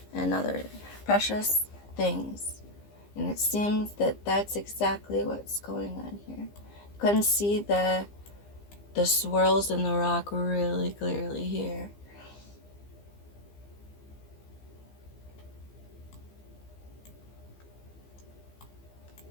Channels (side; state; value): right; late; 15 ms